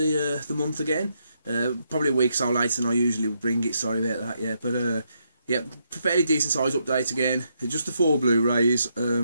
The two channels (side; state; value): both; inverted; correlation -0.78